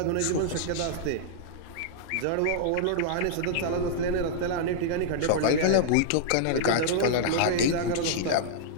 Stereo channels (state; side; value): different; both; correlation -0.01